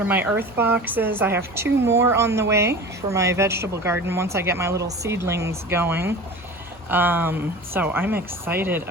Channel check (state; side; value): normal; both; correlation 0.35